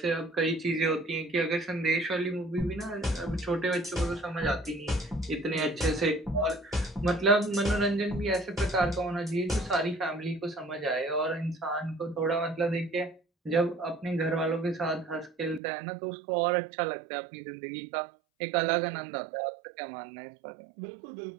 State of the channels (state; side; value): drops out; left; at 15.6 s